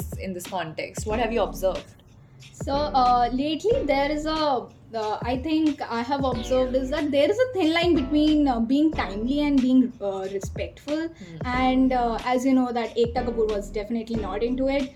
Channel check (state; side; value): identical; both; correlation 1.00